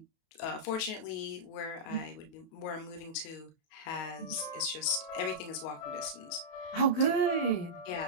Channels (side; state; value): right; late; 28 ms